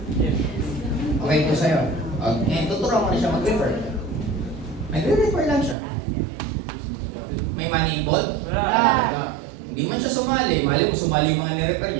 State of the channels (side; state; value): left; drops out; at 5.8 s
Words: Okay po sa'yo. Okay, tuturuan mo na siya mag-refer. Nagre-refer lang siya. May money involved? Wala. Hindi man siya sumali. Mali mo sumali yung mga nirefer